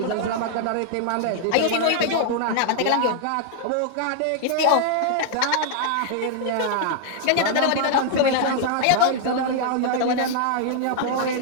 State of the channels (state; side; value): different; both; correlation -0.01